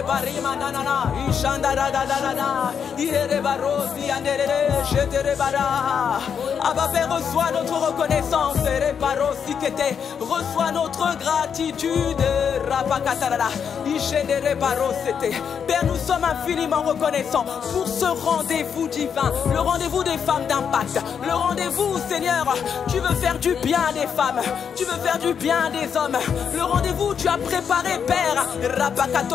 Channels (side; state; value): right; quieter; 7.3 dB